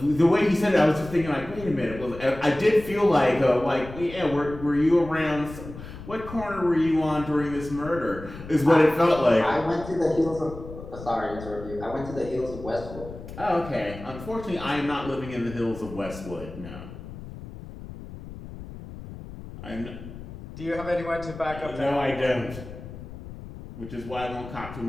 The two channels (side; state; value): left; noise; rumble, 13 dB below the sound